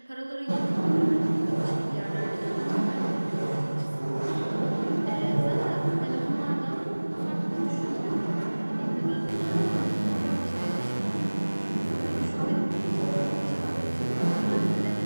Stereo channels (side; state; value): both; inverted; correlation -1.00